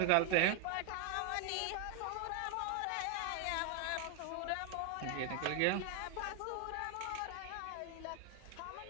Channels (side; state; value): both; different; correlation 0.00